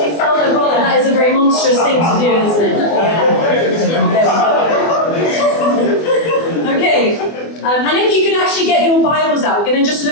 sell their brother. That is a very monstrous thing to do, isn't it? Yeah. Okay. And if you could actually get your Bibles out, we're going to just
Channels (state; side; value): late; right; 24 ms